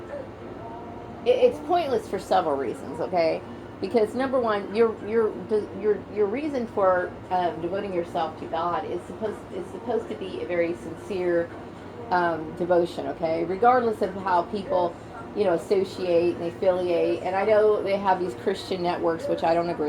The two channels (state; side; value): identical; both; correlation 1.00